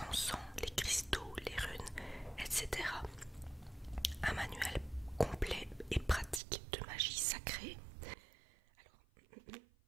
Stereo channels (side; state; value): left; drops out; at 6.4 s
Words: encens, les cristaux, les runes, etc. Un manuel complet et pratique de magie sacrée.